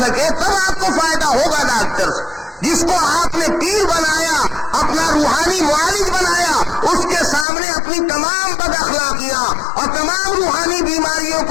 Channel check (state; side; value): drops out; right; at 7.5 s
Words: تب آپ کو فائدہ ہوگا ڈاکٹر سے۔ جس کو آپ نے پیر بنایا، اپنا روحانی معالج بنایا، اس کے سامنے اپنی تمام بد اخلاقیاں اور تمام روحانی بیماریوں